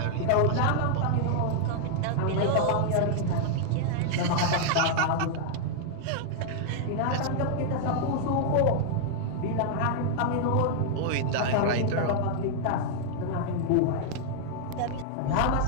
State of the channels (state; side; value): different; both; correlation -0.01